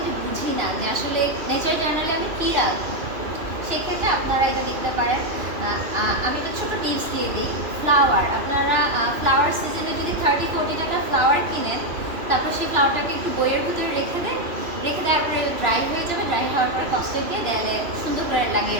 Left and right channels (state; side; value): late; left; 2.8 ms